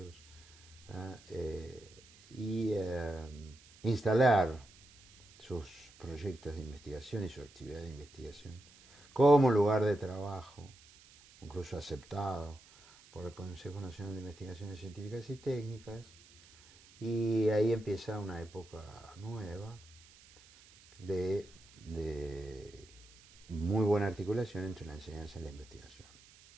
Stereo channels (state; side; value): noise; right; hiss, 24 dB below the sound